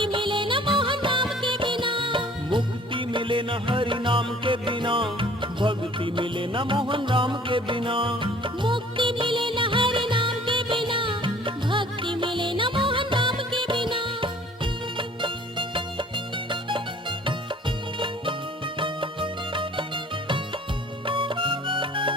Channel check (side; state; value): both; normal; correlation 0.52